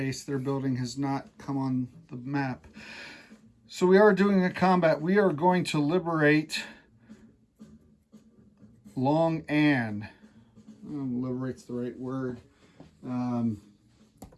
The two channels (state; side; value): identical; both; correlation 1.00